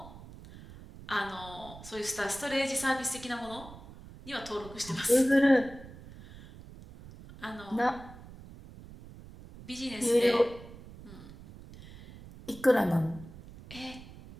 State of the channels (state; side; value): noise; right; rumble, 17 dB below the sound